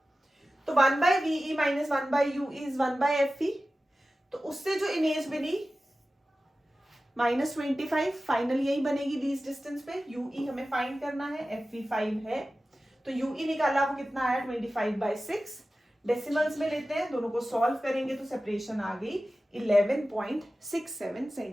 तो 1 by v e minus 1 by u e is 1 by f e. तो उससे जो इमेज बनी -25, फाइनल यही बनेगी लीस्ट डिस्टेंस पे। यूई हमें फाइंड करना है, एफई 5 है, तो यूई निकाला वो कितना आया 25/6। डेसिमल्स में लेते हैं, दोनों को सॉल्व करेंगे तो सेपरेशन आ गई 11.67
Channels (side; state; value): both; normal; correlation 0.95